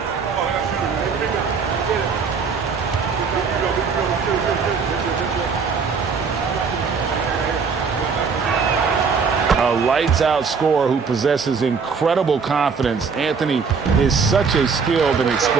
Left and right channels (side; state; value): left; quieter; 5.5 dB